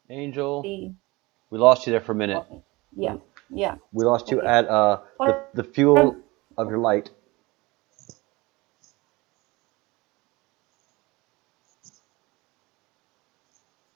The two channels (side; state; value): left; quieter; 22.8 dB